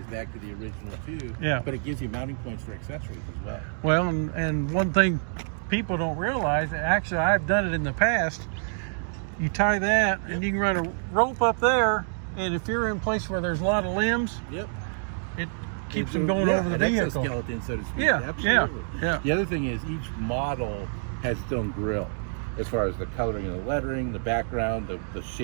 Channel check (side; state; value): left; silent; digital silence